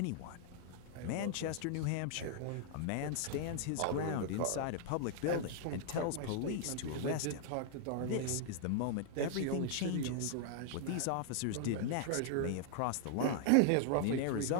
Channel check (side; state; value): both; different; correlation -0.01